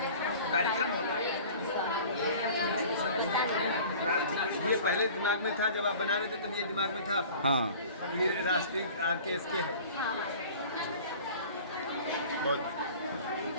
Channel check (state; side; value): inverted; both; correlation -0.44